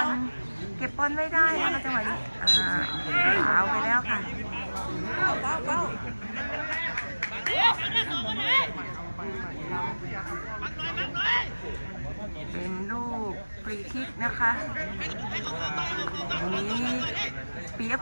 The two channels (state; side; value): inverted; both; correlation -1.00